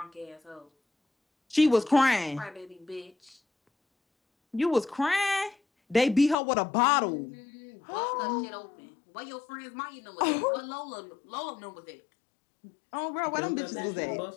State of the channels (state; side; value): drops out; right; at 6.4 s